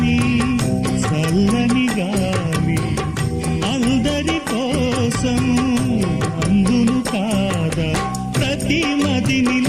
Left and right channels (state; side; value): identical; both; correlation 1.00